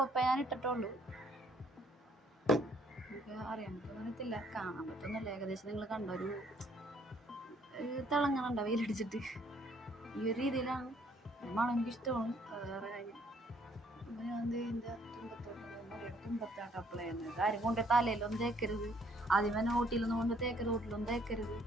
ഞാൻ ഇട്ടിട്ടുള്ളൂ. എനിക്ക് അറിയാൻ പറ്റുന്നില്ല, കാണാൻ പറ്റുന്നില്ല. ഏകദേശം നിങ്ങൾ കണ്ട ഒരു തിളങ്ങണുണ്ട വെയിലടിച്ചിട്ട്. ഈ ഒരു രീതിയിലാണ് മണം എനിക്കിഷ്ടമാണ്. വേറെ കാര്യം ഞാൻ ഇതിൻ്റെ തുമ്പത്താട്ട് അപ്ലൈ ചെയ്യുന്നത്. കാര്യം കൊണ്ട് തലയിലൊന്നും തേക്കരുത്, ആദ്യമേ നോട്ടിലൊന്നും കൊണ്ട് തേക്കരുത്, റോട്ടിലൊന്നും തേക്കരുത്,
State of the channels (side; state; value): both; normal; correlation 0.64